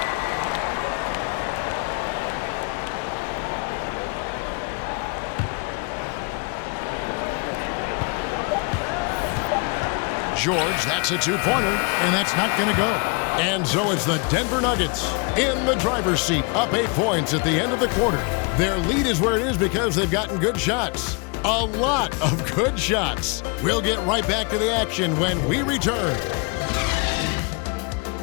George, that's a 2-pointer, and that's not going to go. And so it's the Denver Nuggets in the driver's seat, up 8 points at the end of the quarter. Their lead is where it is because they've gotten good shots. A lot of good shots. We'll get right back to the action when we return.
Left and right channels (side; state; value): right; quieter; 32.5 dB